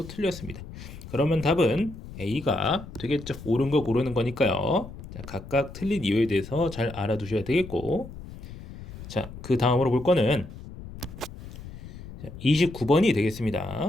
틀렸습니다. 그러면 답은 A가 되겠죠. 옳은 거 고르는 거니까요. 자, 각각 틀린 이유에 대해서 잘 알아두셔야 되겠고 자, 그 다음으로 볼 거는 29번이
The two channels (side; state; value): left; noise; rumble, 14 dB below the sound